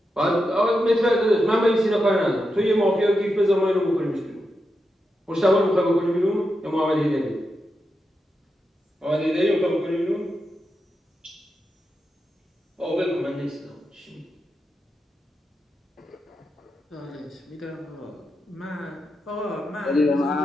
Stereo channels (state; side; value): normal; both; correlation 0.87